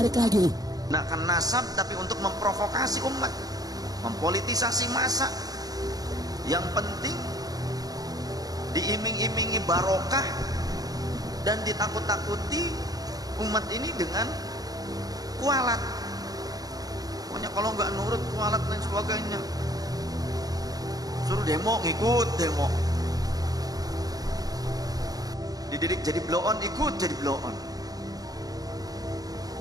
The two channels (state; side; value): late; left; 0.18 ms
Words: lagi. Nak kan nasab tapi untuk memprovokasi umat, mempolitisasi massa. Yang penting diiming-imingi barokah dan ditakut-takuti umat ini dengan kualat. Pokoknya kalau nggak nurut kualat dan sebagainya, suruh demo ngikut demo, dididik jadi blow on ikut jadi blow on,